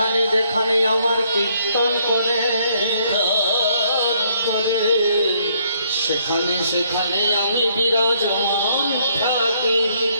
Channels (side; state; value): both; inverted; correlation -0.68